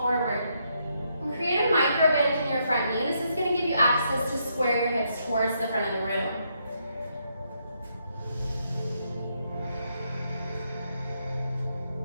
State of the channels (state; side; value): inverted; both; correlation -0.77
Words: forward. And create a micro bend in your front knee. This is going to give you access to square your hips towards the front of the room.